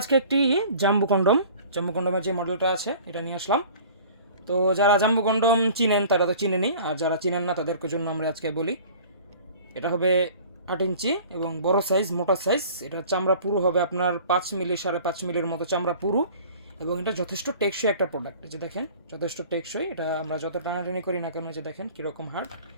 আজকে একটি জাম্বু কন্ডমের যে মডেলটা আছে এটা নিয়ে আসলাম। তো যারা জাম্বু কন্ডম চিনেন তারা তো চিনেনি, আর যারা চিনেন না তাদের জন্য আমরা আজকে বলি। এটা হবে 8 ইঞ্চি এবং বড় সাইজ, মোটা সাইজ। এটা চামড়া পুরু হবে আপনার 5 মিলি 5.5 মিলির মতো চামড়া পুরু, এবং এটা যথেষ্ট টেকসই একটা প্রোডাক্ট। এই যে দেখেন, যথেষ্ট টেকসই। এটা আমরা যত টানাটানি করি না কেন, যে দেখেন কীরকম হার্ড,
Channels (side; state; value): both; inverted; correlation -0.46